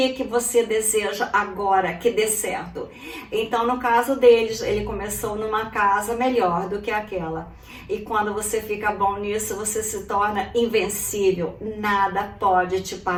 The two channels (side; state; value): both; identical; correlation 1.00